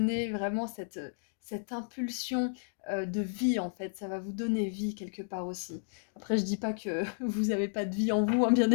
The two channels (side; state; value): right; silent; digital silence